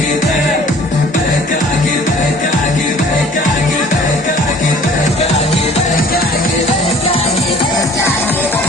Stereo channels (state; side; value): normal; both; correlation 0.51